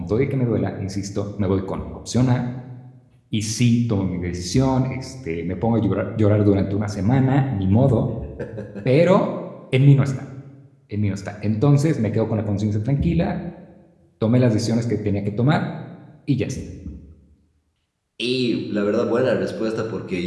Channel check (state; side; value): identical; both; correlation 1.00